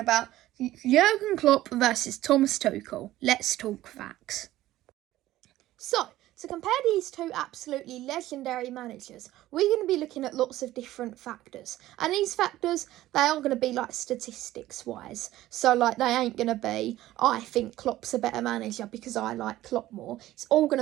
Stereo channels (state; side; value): quieter; left; 15.2 dB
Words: Jurgen Klopp versus Thomas Tuchel. Let's talk facts. So, to compare these two absolutely legendary managers, we're going to be looking at lots of different factors. And these factors, they are going to be like statistics-wise. So like they ain't going to be, I think Klopp's a better manager because I like Klopp more. It's all going